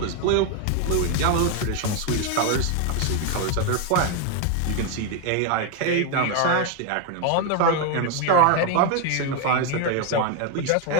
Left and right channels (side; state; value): both; different; correlation 0.01